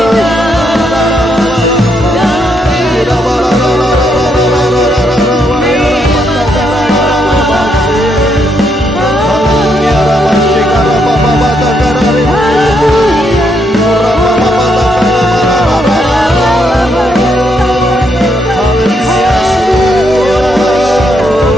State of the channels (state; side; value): normal; both; correlation 0.76